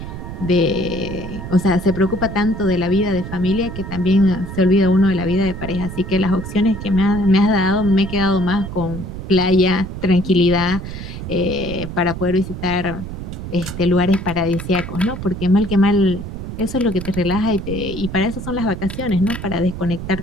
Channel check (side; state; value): right; noise; rumble, 8 dB below the sound